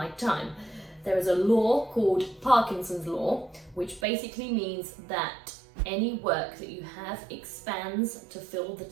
time. There is a law called Parkinson's Law, which basically means that any work that you have expands to fill the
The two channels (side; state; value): left; drops out; at 4.0 s